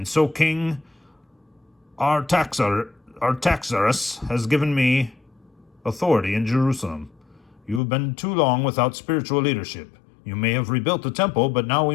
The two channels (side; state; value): right; drops out; at 7.8 s